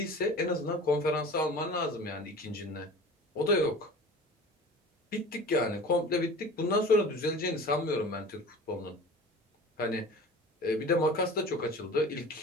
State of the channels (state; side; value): normal; both; correlation 0.39